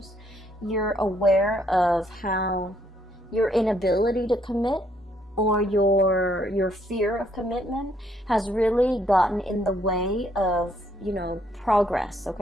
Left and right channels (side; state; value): both; normal; correlation 0.70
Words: you're aware of how your inability to commit, or your fear of commitment, has really gotten in the way of, you know, progress,